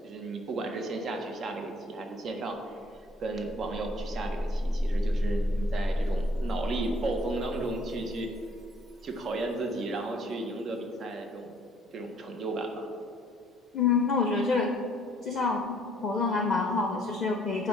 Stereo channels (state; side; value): normal; both; correlation 0.60